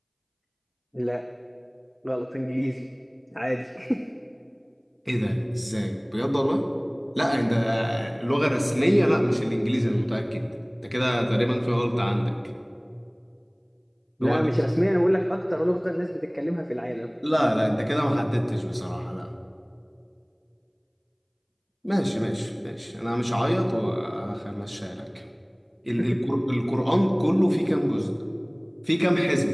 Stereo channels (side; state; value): both; identical; correlation 1.00